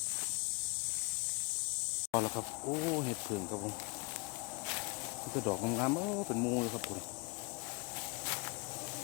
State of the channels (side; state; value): right; quieter; 30.4 dB